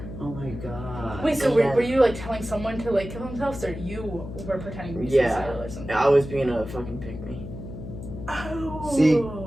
Oh my god. Wait, so And were then- you like telling someone to like kill themselves, or you were pretending to be Yeah. suicidal or something? I was being a fucking pick me. Oh. See,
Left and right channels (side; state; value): left; noise; hum, 10 dB below the sound